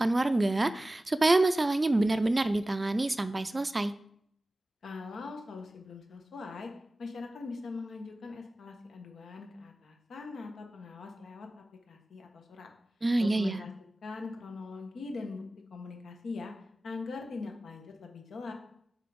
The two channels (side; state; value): both; normal; correlation 0.96